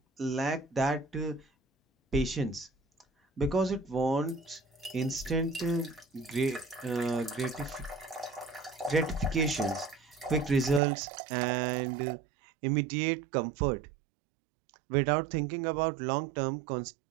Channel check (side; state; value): left; drops out; at 10.8 s